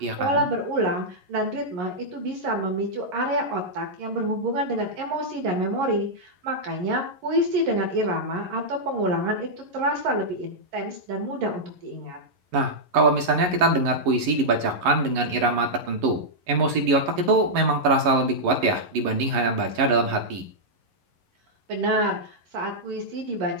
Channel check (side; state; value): left; late; 11 ms